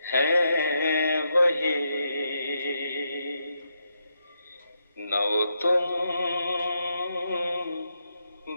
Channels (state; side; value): inverted; both; correlation -0.82